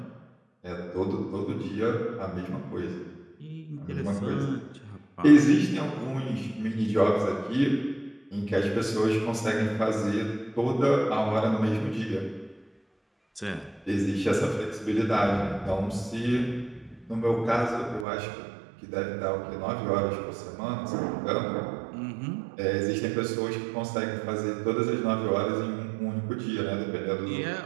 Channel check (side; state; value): left; drops out; at 18.1 s